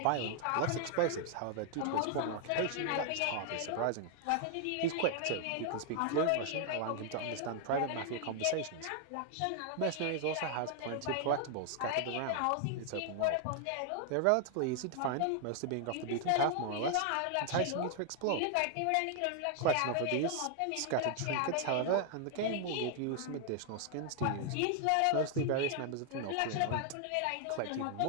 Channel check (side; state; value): both; different; correlation 0.00